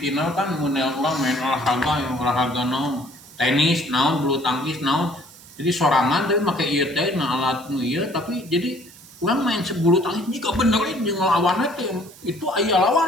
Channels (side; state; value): right; noise; hiss, 21 dB below the sound